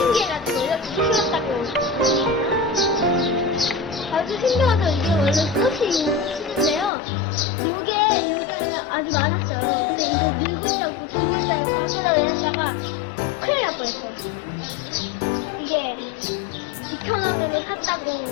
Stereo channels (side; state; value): right; drops out; at 6.9 s